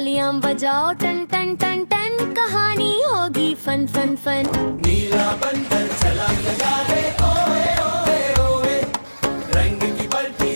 बजाओ टन टन टन टन, कहानी होगी फन फन फन। नीला बंदर छलांग लगा रे, ओए ओए ओए, रंग की बल्टी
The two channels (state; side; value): inverted; both; correlation -1.00